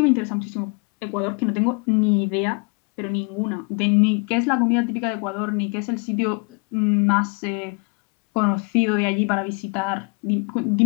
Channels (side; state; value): right; quieter; 34.5 dB